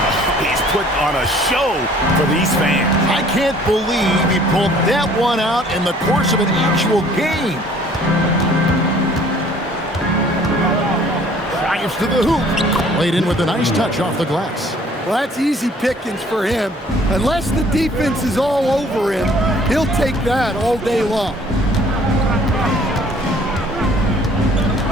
He's put on a show for these fans. I can't believe he pulled that one out in the course of an actual game. Drives to the hoop. Laid in with a nice touch off the glass. Well, that's easy pickings for him. Unless the defense is all over him, he'll take that all day long.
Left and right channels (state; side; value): normal; both; correlation 0.56